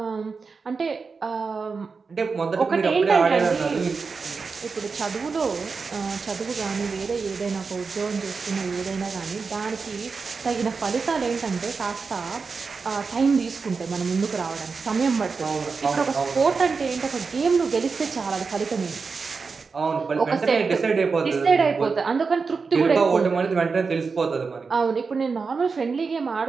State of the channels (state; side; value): quieter; left; 4.8 dB